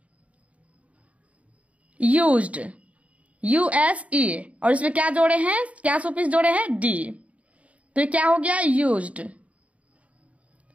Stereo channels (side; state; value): left; late; 0.066 ms